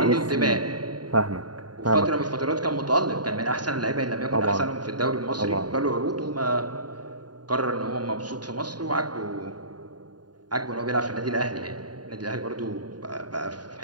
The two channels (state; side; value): late; left; 0.70 ms